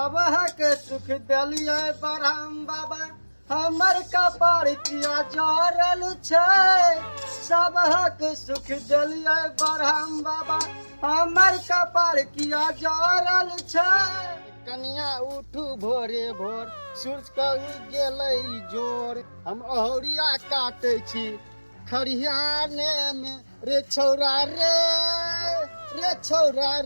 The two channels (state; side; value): inverted; both; correlation -1.00